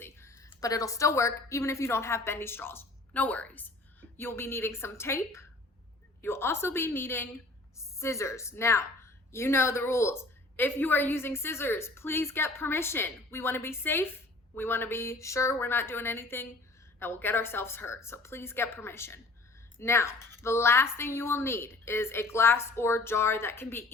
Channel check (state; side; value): quieter; right; 3.1 dB